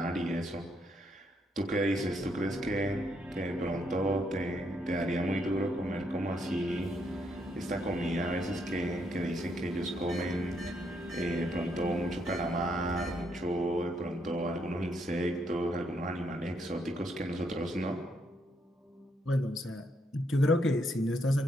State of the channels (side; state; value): both; normal; correlation 0.75